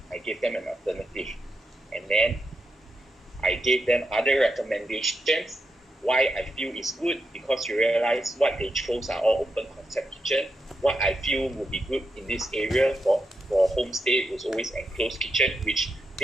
I gave them an alternative, and then I gave them other recommendations. Why I feel is good, because you realize what they chose are all open concept kitchen. What I feel would be good in this area for for homestay was always enclosed kitchen, which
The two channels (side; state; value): both; normal; correlation 0.86